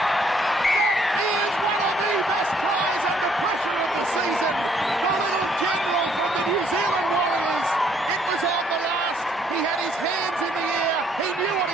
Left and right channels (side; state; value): both; normal; correlation 0.66